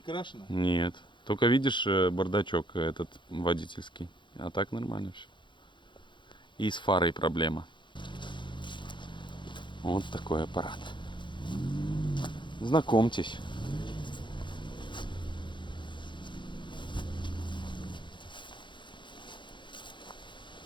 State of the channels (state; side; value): late; right; 0.23 ms